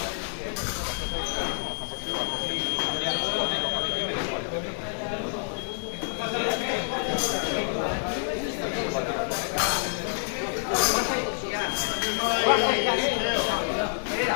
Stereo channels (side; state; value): right; silent; digital silence